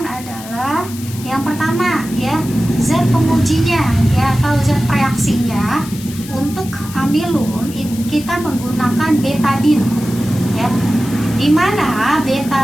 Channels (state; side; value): noise; left; hiss, 15 dB below the sound